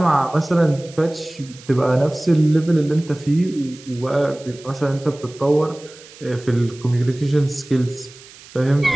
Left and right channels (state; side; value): noise; right; hiss, 21 dB below the sound